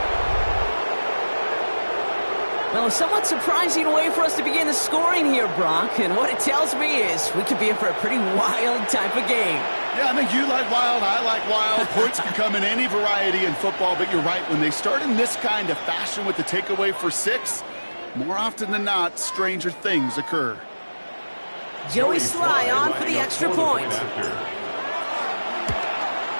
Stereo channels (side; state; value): both; inverted; correlation -1.00